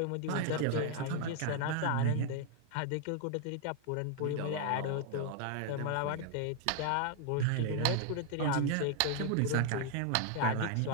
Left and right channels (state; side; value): different; both; correlation 0.00